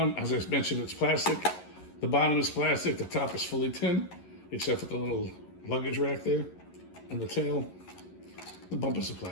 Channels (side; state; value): right; late; 11 ms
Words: as I mentioned, it's plastic. The bottom is plastic. The top is fully tin, except for the little luggage rack there and the tail. The bumpers are